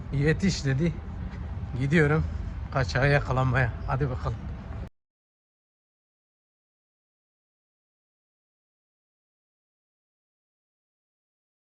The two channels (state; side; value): identical; both; correlation 1.00